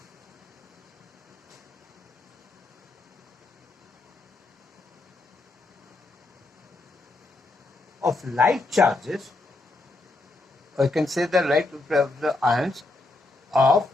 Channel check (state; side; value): quieter; right; 3.0 dB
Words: of like charges, or you can say the like of the ions of